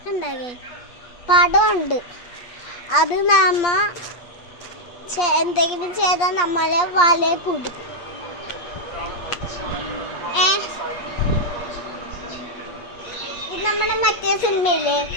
പടമുണ്ട്. അത് നമ്മ എന്തെങ്കിലും ചെയ്താൽ നമ്മളെ വലയെ കുടിക്കും. ഇത് നമ്മുടെ മറ്റേ സിനിമയില്ലേ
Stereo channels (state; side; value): late; right; 8.5 ms